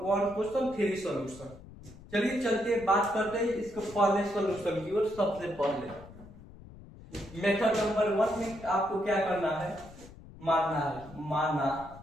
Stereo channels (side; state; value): left; noise; rumble, 18 dB below the sound